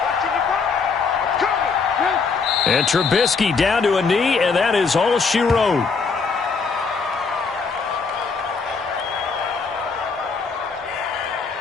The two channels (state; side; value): quieter; right; 4.9 dB